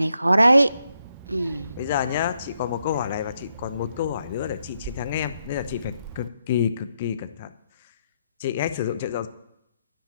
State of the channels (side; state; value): both; inverted; correlation -0.79